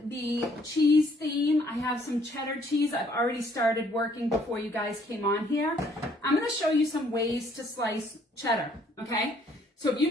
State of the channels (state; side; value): normal; both; correlation 0.63